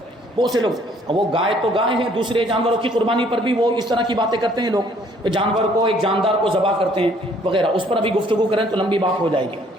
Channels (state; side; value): normal; both; correlation 0.61